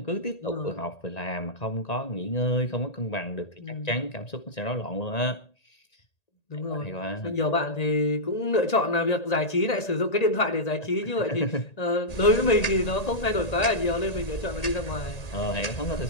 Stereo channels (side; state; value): right; late; 1.8 ms